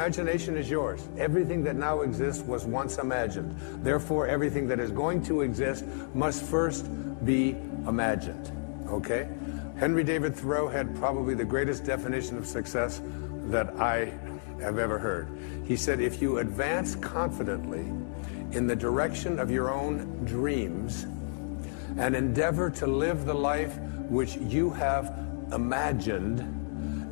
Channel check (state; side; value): silent; right; digital silence